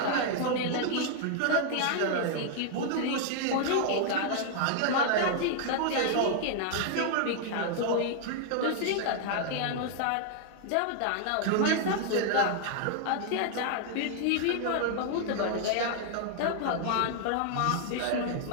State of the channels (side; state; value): both; different; correlation -0.01